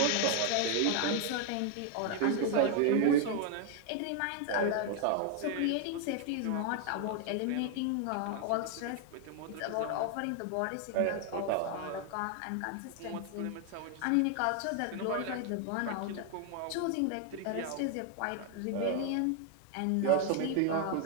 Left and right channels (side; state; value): both; different; correlation 0.00